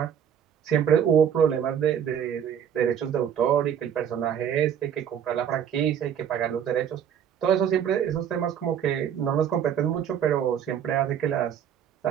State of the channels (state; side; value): quieter; left; 8.9 dB